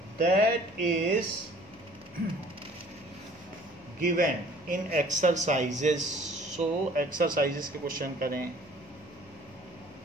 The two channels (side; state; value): left; noise; hum, 29 dB below the sound